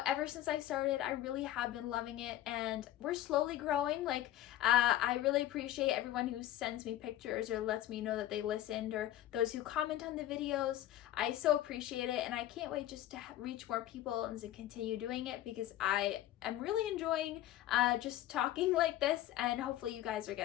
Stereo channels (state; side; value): quieter; right; 13.5 dB